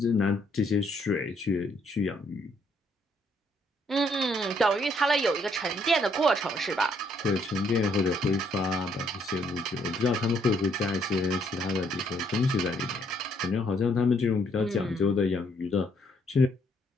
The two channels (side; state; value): both; normal; correlation 0.69